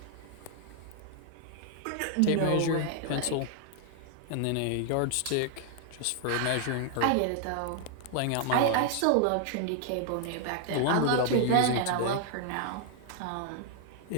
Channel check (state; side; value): different; both; correlation 0.00